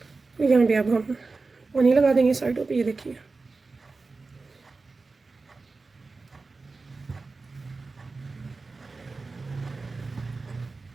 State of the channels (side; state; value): left; quieter; 3.9 dB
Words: तो यहाँ पे अब हम पानी लगा देंगे साइडों पे, ये देखिए।